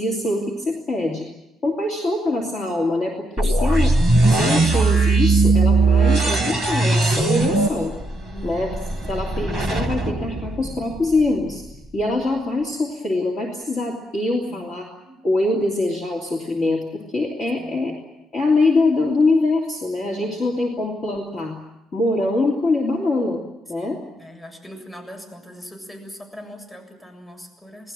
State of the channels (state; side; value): normal; both; correlation 0.79